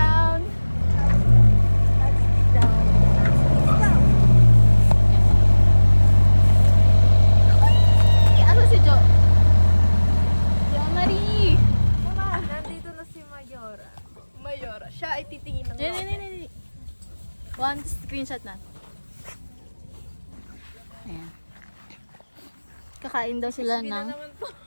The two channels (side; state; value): both; inverted; correlation -1.00